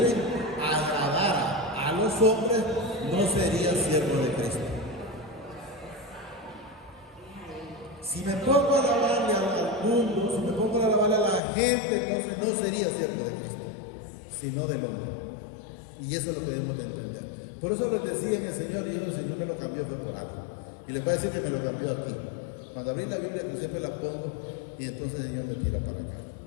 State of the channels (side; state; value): right; drops out; at 11.4 s